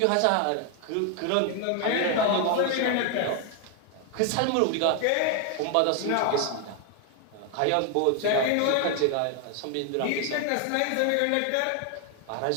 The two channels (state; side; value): different; both; correlation 0.01